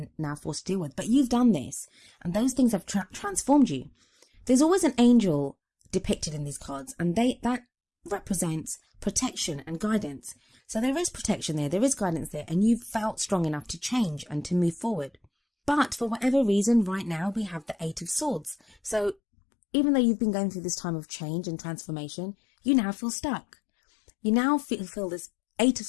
now forced to deal with. But you've done this, and those things have transformed you. There's always an angel depicted in these cards, and that represents protection and guidance. So there is protection there is guidance there, and you've felt strong enough to change and to move forward. But for whatever reason, right now we have the Eight of Swords. So even though you've been going through this time of change and transformation, you now feel stuck. You now feel this Eight of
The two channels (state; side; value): drops out; right; at 19.2 s